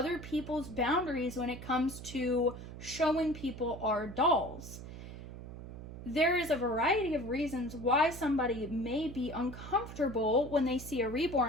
people's boundaries when it comes to showing people our dolls. There is a variety of reasons why somebody may be uncomfortable when they see a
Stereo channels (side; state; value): right; noise; hum, 12 dB below the sound